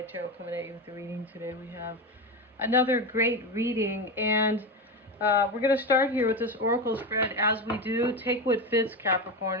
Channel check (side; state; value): both; normal; correlation 0.18